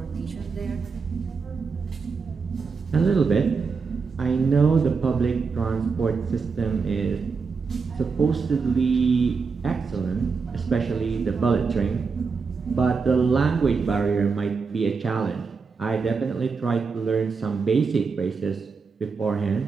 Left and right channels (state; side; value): quieter; left; 5.0 dB